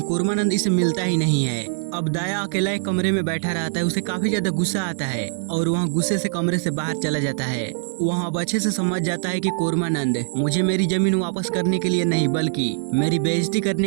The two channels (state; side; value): silent; left; digital silence